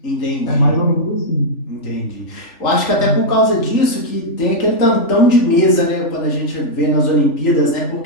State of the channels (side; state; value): right; late; 3.4 ms